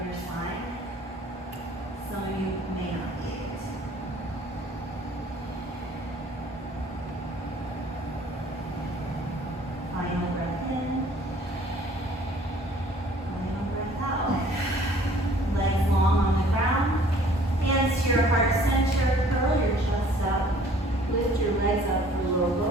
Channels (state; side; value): normal; both; correlation 0.54